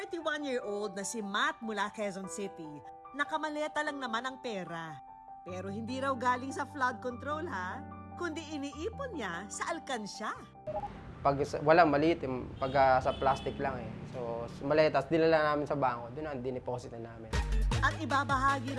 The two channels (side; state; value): both; identical; correlation 1.00